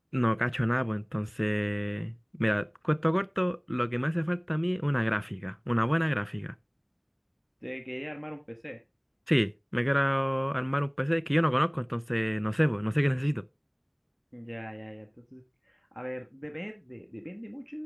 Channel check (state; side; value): identical; both; correlation 1.00